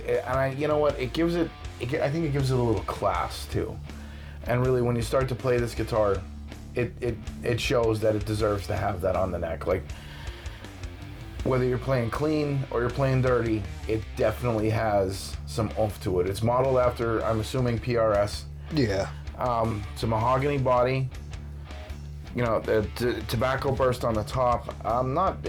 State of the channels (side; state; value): both; identical; correlation 1.00